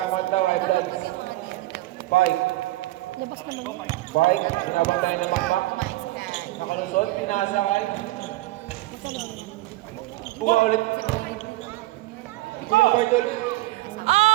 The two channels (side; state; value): left; quieter; 18.5 dB